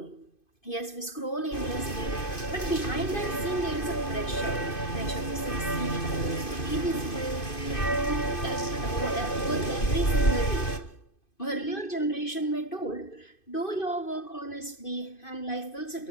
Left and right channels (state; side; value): late; right; 2.5 ms